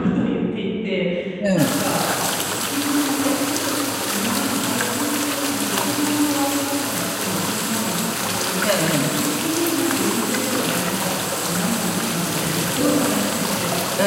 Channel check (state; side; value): identical; both; correlation 1.00